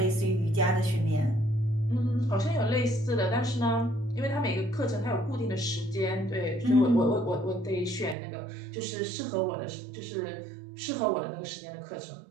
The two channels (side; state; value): left; drops out; at 8.2 s